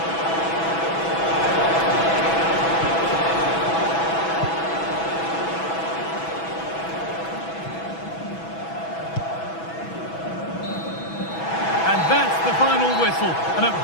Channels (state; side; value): late; right; 6.1 ms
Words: And that's the final whistle. And